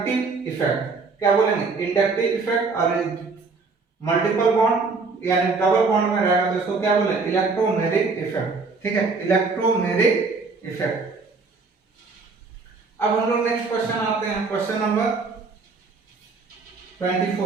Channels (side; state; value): left; quieter; 4.3 dB